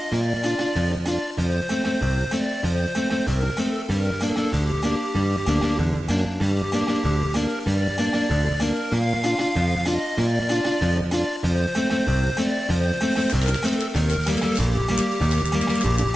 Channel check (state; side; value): normal; both; correlation 0.94